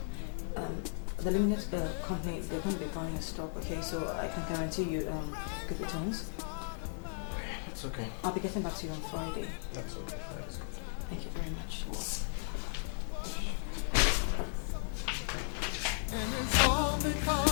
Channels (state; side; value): silent; right; digital silence